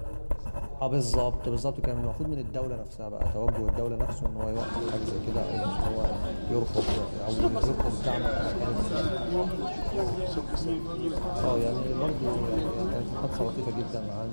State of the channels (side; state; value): both; inverted; correlation -1.00